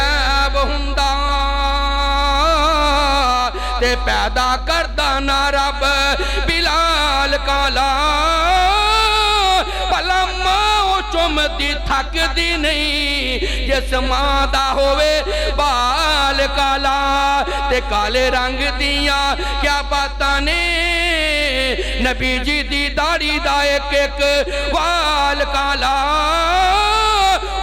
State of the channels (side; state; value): both; identical; correlation 1.00